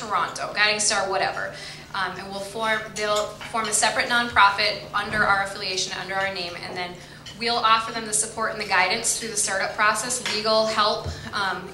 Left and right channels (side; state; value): both; identical; correlation 1.00